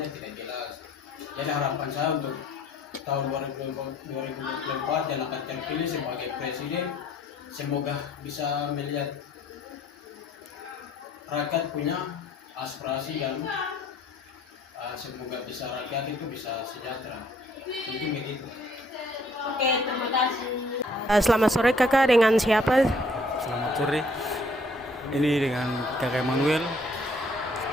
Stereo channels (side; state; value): both; normal; correlation 0.61